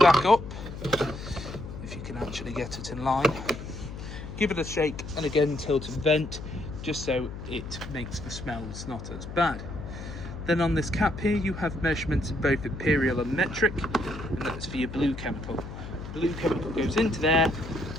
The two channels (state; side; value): noise; left; hum, 10 dB below the sound